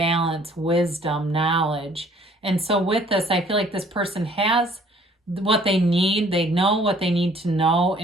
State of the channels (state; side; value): normal; both; correlation 0.58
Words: wisdom, knowledge. And so with this, I feel like this person has what they need. They know what they need to know